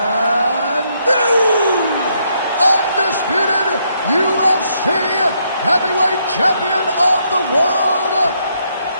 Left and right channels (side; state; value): both; inverted; correlation -0.74